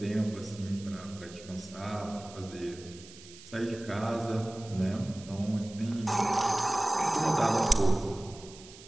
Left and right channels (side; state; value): right; noise; hiss, 18 dB below the sound